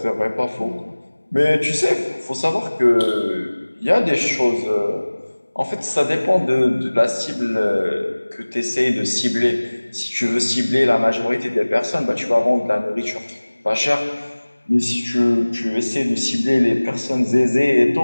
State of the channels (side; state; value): both; inverted; correlation -1.00